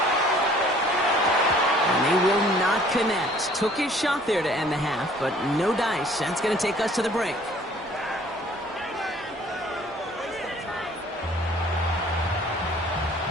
And they will not connect. Took his shot there to end the half, but no dice. That's going to take us to the break.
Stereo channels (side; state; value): both; normal; correlation 0.55